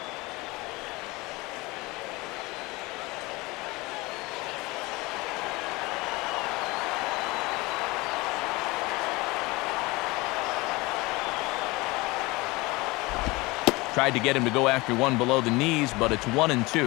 Tried to get him to go after one below the knees, but it's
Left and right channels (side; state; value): right; quieter; 22.9 dB